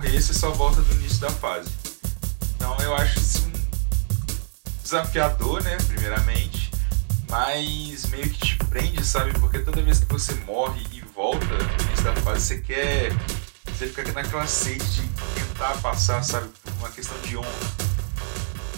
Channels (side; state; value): left; silent; digital silence